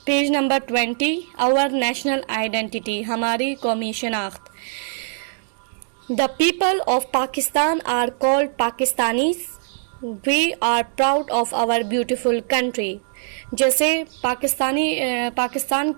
20। Our national identity, हमारी कौमी शनाख्त। The people of Pakistan are called Pakistanis. We are proud of our beautiful country. जैसे पाकिस्तान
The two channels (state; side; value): silent; left; digital silence